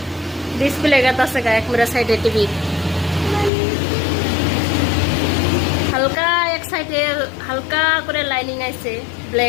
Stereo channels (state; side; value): drops out; right; at 3.5 s